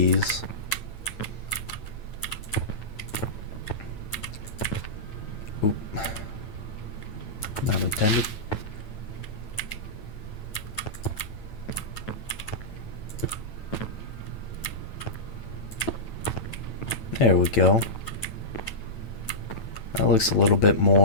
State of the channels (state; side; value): late; right; 9.1 ms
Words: Oop. Not intended. There we go. That looks a little bit